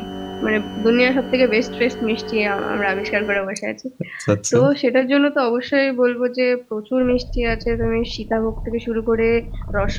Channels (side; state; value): both; identical; correlation 1.00